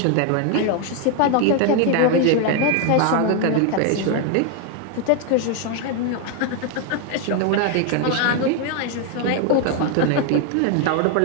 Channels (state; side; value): different; both; correlation 0.01